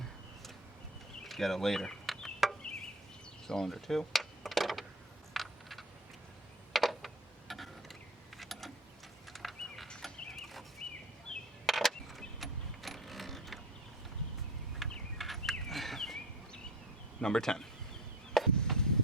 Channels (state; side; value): normal; both; correlation 0.34